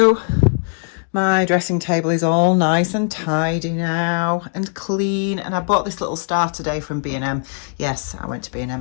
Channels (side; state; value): right; silent; 56 dB below the other